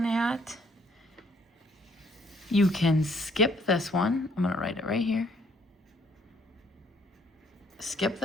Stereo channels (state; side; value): normal; both; correlation 0.65